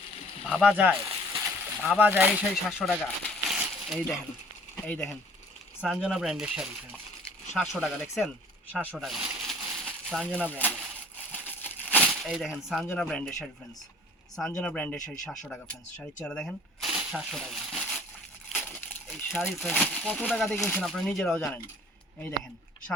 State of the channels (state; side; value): normal; both; correlation 0.51